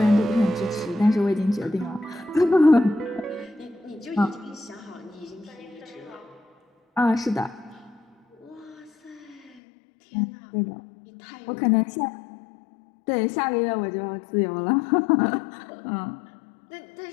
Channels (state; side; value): drops out; right; at 9.6 s